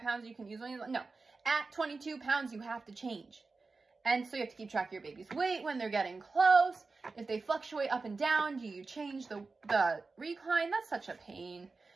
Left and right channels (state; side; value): quieter; left; 4.0 dB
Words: pounds you can use when you, no. At 22 pounds, you have to change. And so you have to keep track of your baby's weight when they're getting close. If they fluctuate up and down, do you change the recline? That's such a pain.